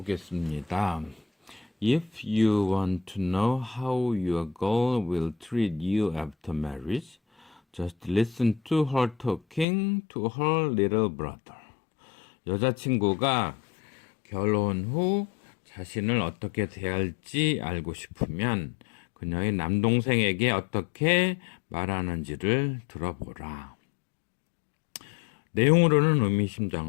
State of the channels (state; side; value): drops out; right; at 9.7 s